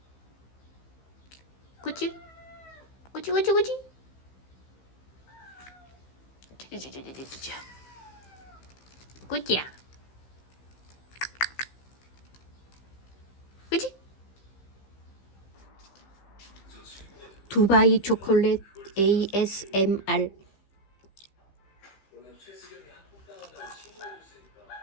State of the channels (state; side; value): late; right; 15 ms